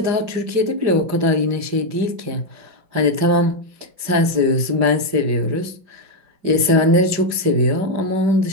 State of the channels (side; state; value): left; late; 5.0 ms